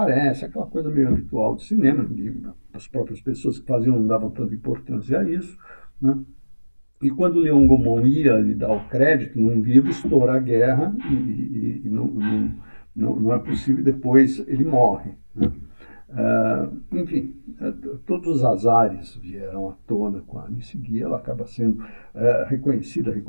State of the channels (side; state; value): both; inverted; correlation -1.00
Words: aquela coisa meio habitual de cinema, as próprias pessoas que faziam não davam tanta importância a isso, né? E quando o Leon Gaumont ia lhe dar o crédito num livro, estoura a guerra e não é possível, depois ele morre, né? Enfim, todos os azares vieram à tona com a Alice Guy, ela acaba sendo reconhecida,